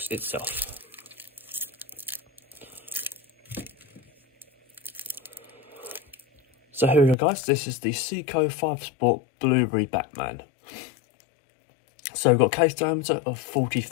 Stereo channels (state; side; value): drops out; right; at 7.2 s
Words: itself. So here we go guys, this is the Seiko 5 Sport Blueberry Batman. So we've got a case diameter of